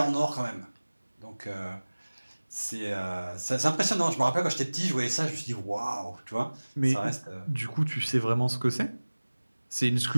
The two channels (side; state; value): both; inverted; correlation -1.00